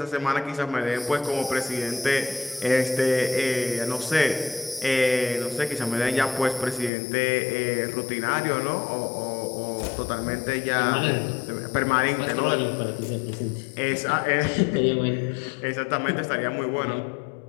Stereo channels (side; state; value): right; drops out; at 6.9 s